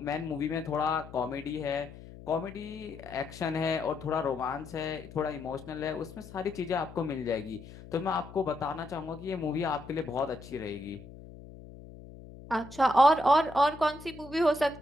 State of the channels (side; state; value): left; noise; hum, 16 dB below the sound